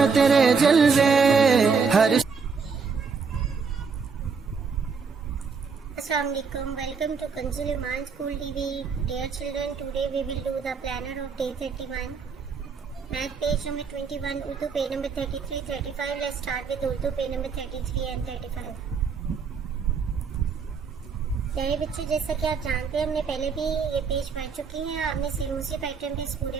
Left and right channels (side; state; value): left; quieter; 5.4 dB